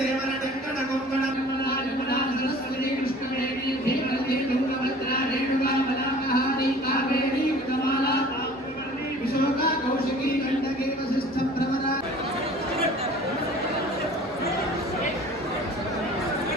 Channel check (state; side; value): normal; both; correlation 0.46